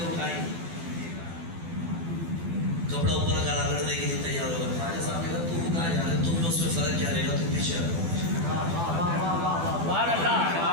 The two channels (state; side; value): late; left; 12 ms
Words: اٹھائیں کپڑا اوپر کرا لڑنے کے لیے تیار ہوگا. خواجہ صاحب نے کہا تم کہاں جا رہے؟ تم میں اس میں فرق کیا رہے گا؟ تم پیچھے رہو. سبحان اللہ.